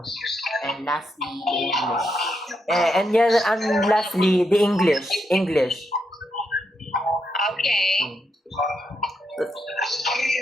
And lastly, the English. And lastly, the English. okay?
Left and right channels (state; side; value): normal; both; correlation 0.81